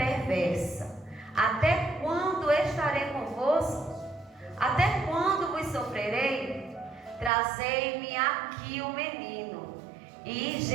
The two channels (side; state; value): left; drops out; at 7.3 s